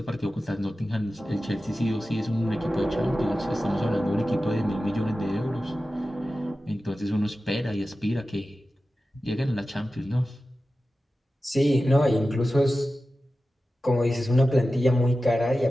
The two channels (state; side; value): normal; both; correlation 0.94